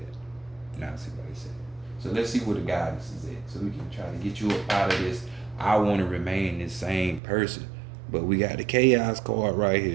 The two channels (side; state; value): left; drops out; at 7.2 s